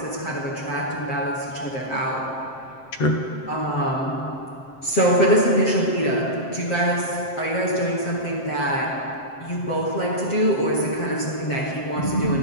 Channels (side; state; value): right; late; 7.6 ms